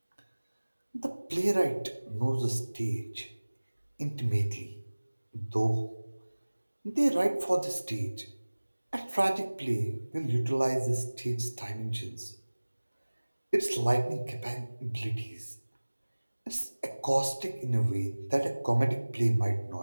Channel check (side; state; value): both; inverted; correlation -1.00